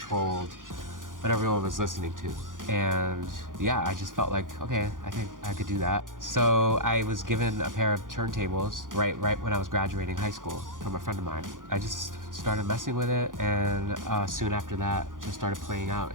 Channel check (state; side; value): late; left; 0.89 ms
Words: what everyone was listening to. And yeah, I just felt like, okay, I think I could do that. So I was given a pair of turntables right when I was graduating high school from a friend of mine. I just started messing with it, and soon after that, just started playing out